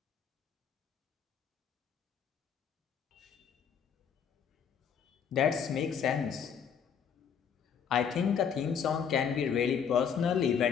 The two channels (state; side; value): quieter; right; 7.4 dB